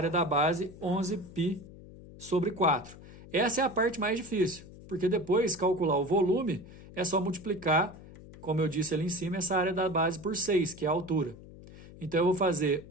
da base 11π sobre 4. Essa é a parte mais difícil, porque depois calcular o volume é só multiplicar, como eu disse ali em cima, essa área da base por 6, que é a altura. Então eu vou fazer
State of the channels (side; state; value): left; noise; hum, 18 dB below the sound